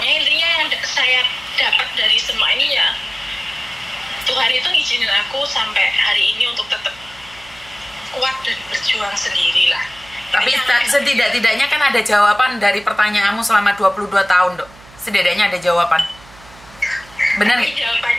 intinya yang saya dapat dari semua ini ya, Tuhan itu ngizinin aku sampai hari ini untuk tetap kuat dan berjuang sendirilah. Tapi setidak-tidaknya kan ada jawaban dari pertanyaanmu selama 22 tahun, Dok. Setidaknya ada jawaban. Benar nggak?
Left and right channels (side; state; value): right; noise; hum, 23 dB below the sound